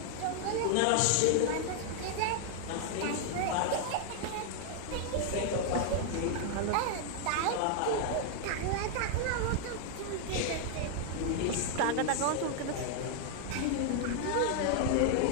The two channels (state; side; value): different; both; correlation 0.00